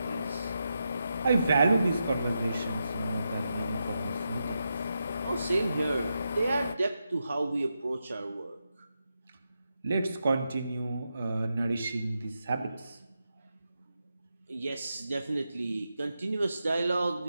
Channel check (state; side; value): inverted; both; correlation -0.87